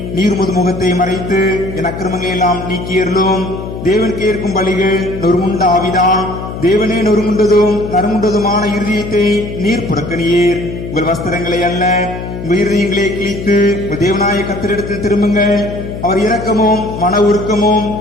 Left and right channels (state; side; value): noise; left; hum, 8 dB below the sound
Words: நீர் முது முகத்தை மறைத்து என் அக்கிரமங்களை எல்லாம் நீக்கியருளும். தேவன் கேட்கும் பலிகள் நொறுமுண்ட ஆவிதான். தேவனே நொறுமுண்டதும் நறுமுண்டதுமான இருதயத்தை நீர் புறக்கணியீர். உங்கள் வஸ்திரங்களை அல்ல, உங்கள் இருதயங்களை கிழித்து உங்கள் தேவனாய கர்த்தரிடத்தில் திரும்புங்கள். அவர் இரக்கமும் மன உருக்கமும்